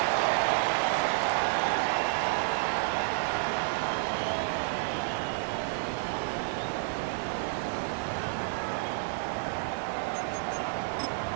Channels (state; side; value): silent; left; digital silence